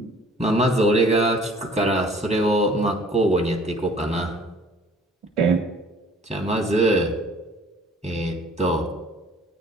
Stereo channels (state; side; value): normal; both; correlation 0.53